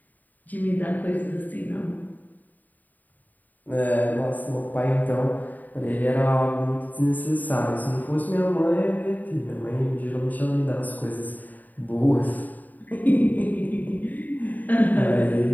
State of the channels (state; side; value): late; right; 0.084 ms